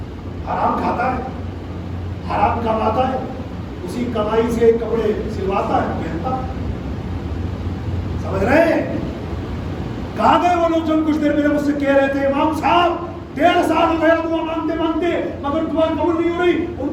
حرام کھاتا ہے، حرام کماتا ہے، اسی کمائی سے کپڑے سلواتا ہے، پہنتا. سمجھ رہے ہیں؟ کہاں گئے وہ لوگ جو کچھ دیر پہلے مجھ سے کہہ رہے تھے امام صاحب 1.5 سال ہو گیا دعا مانگتے مانگتے مگر دعا قبول نہیں ہو رہی. ان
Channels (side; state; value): both; identical; correlation 1.00